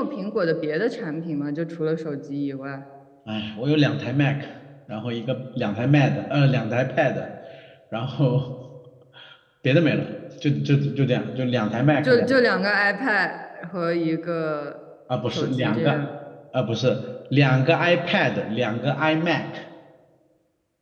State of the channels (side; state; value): both; identical; correlation 1.00